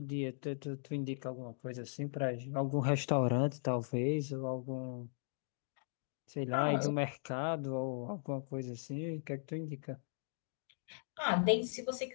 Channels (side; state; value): right; silent; digital silence